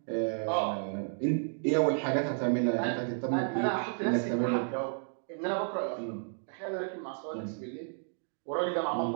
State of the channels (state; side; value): silent; left; 56 dB below the other